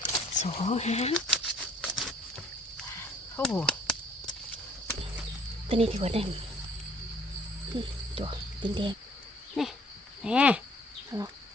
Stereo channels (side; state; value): both; normal; correlation 0.58